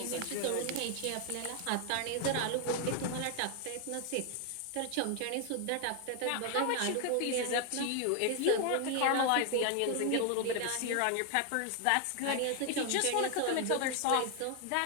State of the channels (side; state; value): both; different; correlation 0.00